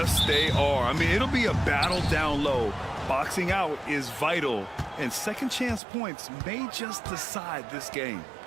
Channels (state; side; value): drops out; left; at 5.8 s